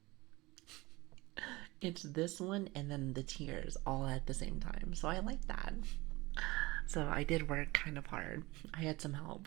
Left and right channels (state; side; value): quieter; left; 21.5 dB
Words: It's this one and then the tears all at the same time. So I like that. So I did work kind of hard. I had some help.